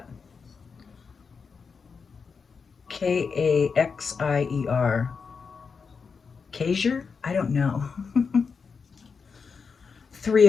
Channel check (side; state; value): right; quieter; 5.4 dB